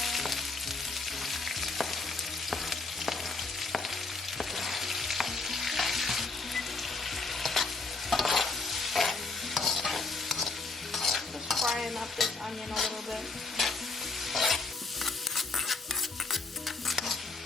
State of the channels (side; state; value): right; quieter; 3.7 dB